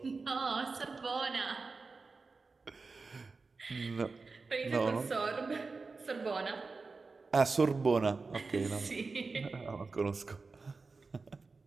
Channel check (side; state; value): left; quieter; 4.1 dB